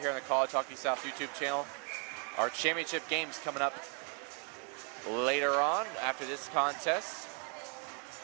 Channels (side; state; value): left; quieter; 39.0 dB